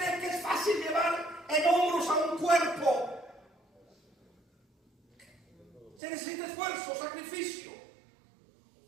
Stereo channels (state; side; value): drops out; left; at 6.0 s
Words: que es fácil llevar en hombros a un cuerpo? Se necesita esfuerzo, sacrificio.